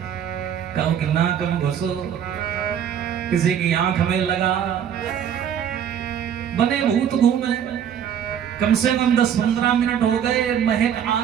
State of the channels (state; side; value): quieter; left; 8.9 dB